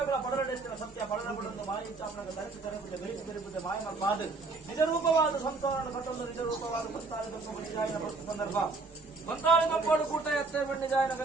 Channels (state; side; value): quieter; left; 3.7 dB